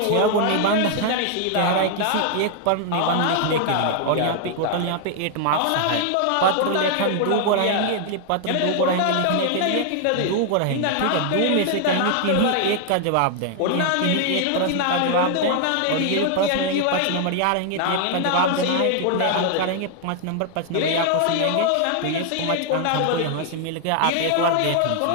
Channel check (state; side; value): different; both; correlation 0.00